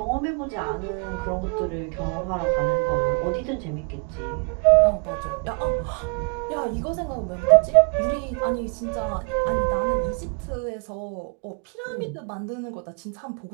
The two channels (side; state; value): left; quieter; 37.5 dB